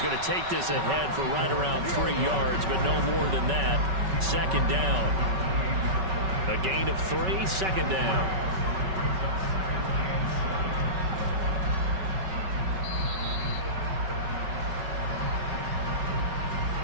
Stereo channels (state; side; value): late; left; 5.3 ms